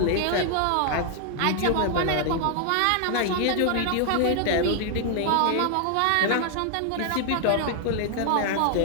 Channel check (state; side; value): different; both; correlation 0.00